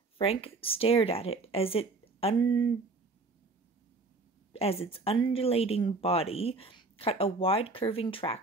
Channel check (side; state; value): left; quieter; 3.7 dB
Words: Frank stared at it as its undulating body cut a wide curving